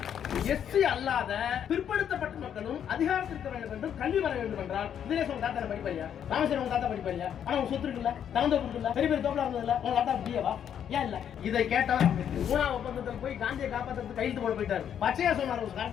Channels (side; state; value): right; quieter; 9.0 dB